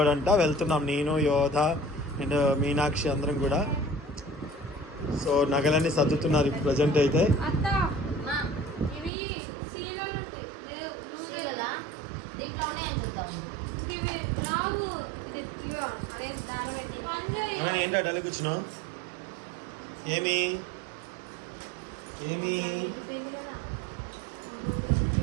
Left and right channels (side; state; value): left; drops out; at 9.1 s